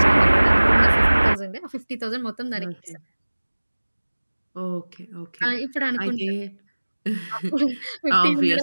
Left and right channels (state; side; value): inverted; both; correlation -1.00